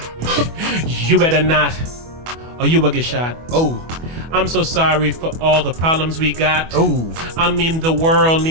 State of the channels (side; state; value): left; late; 25 ms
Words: You better not, or you will get shot. Oh. I'm so sorry for all the problems we got. Oh. I mean, the world